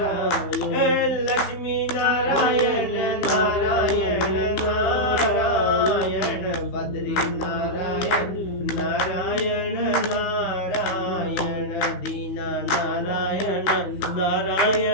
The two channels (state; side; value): late; right; 15 ms